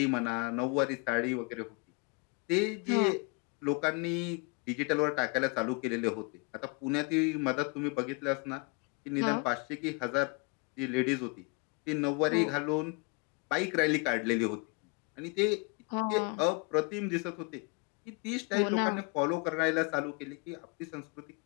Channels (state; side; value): quieter; right; 30.5 dB